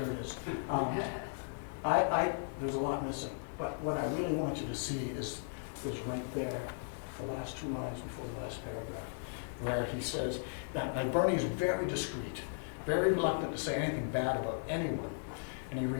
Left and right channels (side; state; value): right; silent; 53 dB below the other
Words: it is. There's a lot missing, but what I really want you to see is right there, the last 2 lines before the last paragraph, where he says that Burney is very discreet, very reluctant to say anything bad about anyone, and he